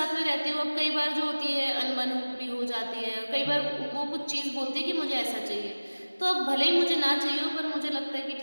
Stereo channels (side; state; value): both; inverted; correlation -1.00